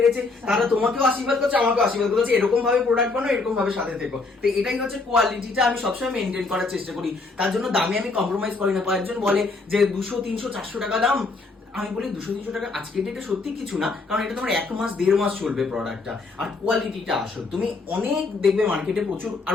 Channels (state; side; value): quieter; right; 3.8 dB